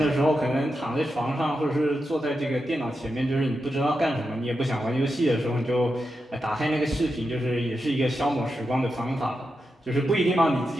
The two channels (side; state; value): both; normal; correlation 0.88